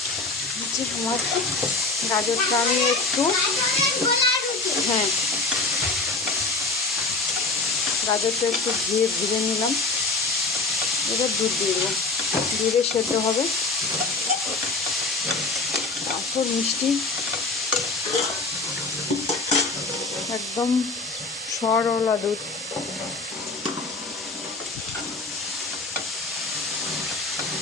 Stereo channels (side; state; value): right; quieter; 3.6 dB